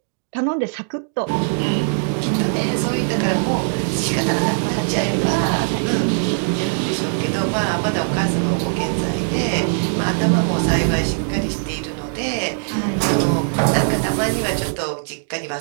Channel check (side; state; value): left; silent; digital silence